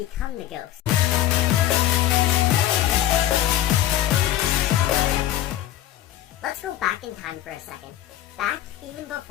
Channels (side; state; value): right; quieter; 12.7 dB